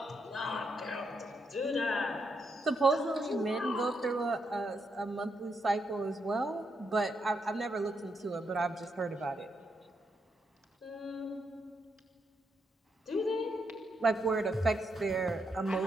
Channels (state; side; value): normal; both; correlation 0.80